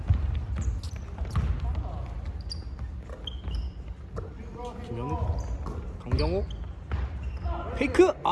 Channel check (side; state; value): both; identical; correlation 1.00